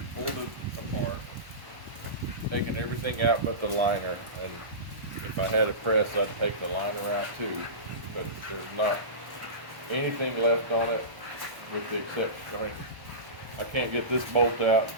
pulled it apart, taking everything out but the liner. And if I had a press, I'd take the liner out too. But there's not anything left on it with the exception, I can't get this bolt out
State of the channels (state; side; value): late; left; 1.1 ms